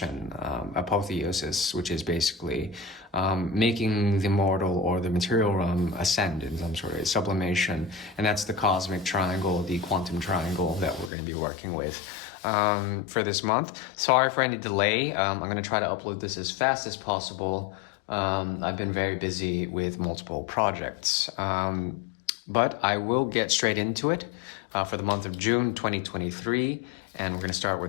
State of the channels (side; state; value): right; drops out; at 11.1 s